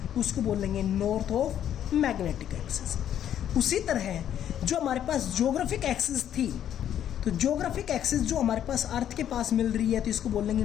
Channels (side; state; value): right; quieter; 10.3 dB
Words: उसको बोल लेंगे नॉर्थ ऑफ मैग्नेटिक एक्सिस। उसी तरह जो हमारे पास ज्योग्राफिक एक्सिस थी, तो ज्योग्राफिक एक्सिस जो हमारे पास अर्थ के पास मिल रही है तो इसको बोल लेंगे